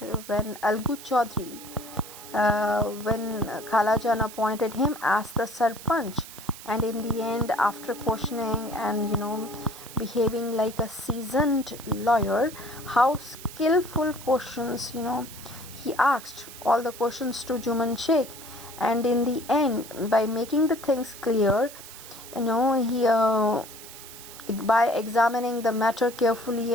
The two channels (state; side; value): noise; right; hiss, 15 dB below the sound